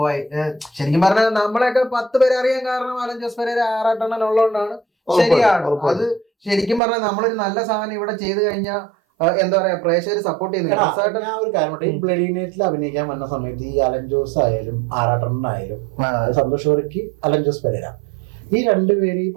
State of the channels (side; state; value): left; drops out; at 6.8 s